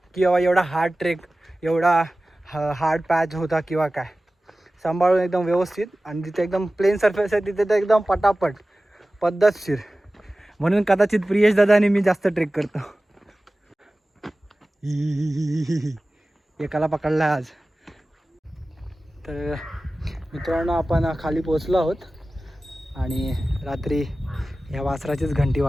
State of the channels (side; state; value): both; normal; correlation 0.96